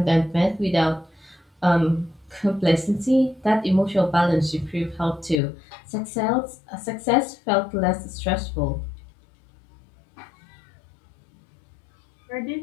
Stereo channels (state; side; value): drops out; right; at 5.4 s